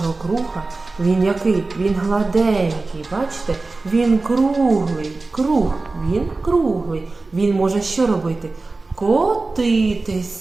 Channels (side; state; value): left; quieter; 3.5 dB